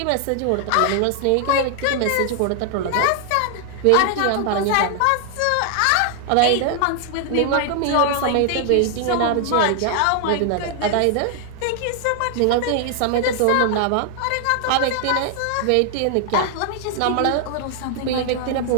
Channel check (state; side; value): different; both; correlation 0.00